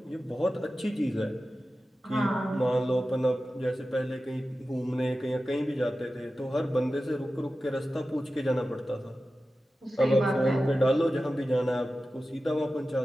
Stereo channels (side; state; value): both; normal; correlation 0.94